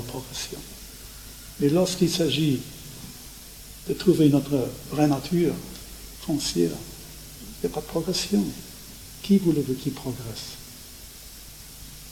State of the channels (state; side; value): identical; both; correlation 1.00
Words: Mais lorsqu'il s'agit de trouver notre vraie nature foncière, il n'y a pas de progression. Qui voulez-vous qui progresse?